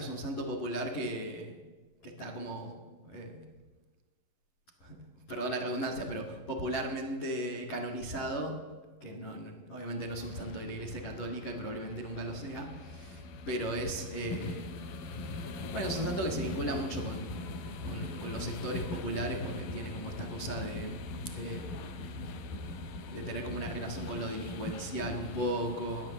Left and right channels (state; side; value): late; right; 11 ms